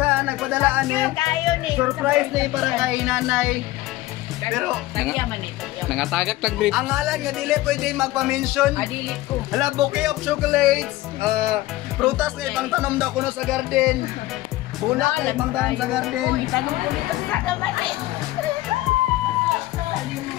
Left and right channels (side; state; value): right; quieter; 17.1 dB